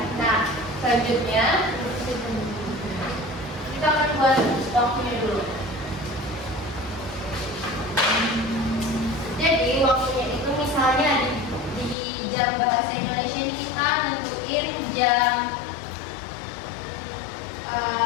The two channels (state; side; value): drops out; right; at 12.0 s